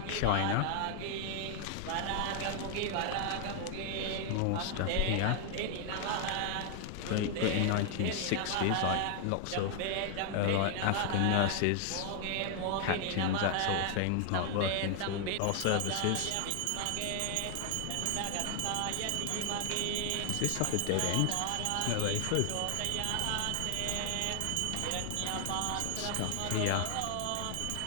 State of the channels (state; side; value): different; both; correlation 0.00